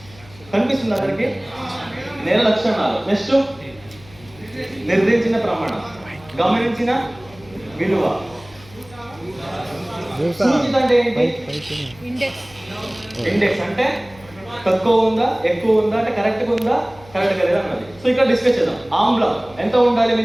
కనిపిస్తుంది అందరికి, నేల లక్షణాలు. నెక్స్ట్ నిర్ణయించిన ప్రమాణం, గమనించిన విలువ. సూచిత అంటే ఏంటి? ఇండెక్స్. ఇండెక్స్ అంటే తక్కువ ఉందా ఎక్కువ ఉందా అంటే కరెక్ట్గా ఉందా కరెక్ట్గా లేదా అన్నది. సో ఇక్కడ డిస్కస్ చేద్దాం. ఆమ్లం ఎంత ఉండాలి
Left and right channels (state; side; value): noise; left; hum, 23 dB below the sound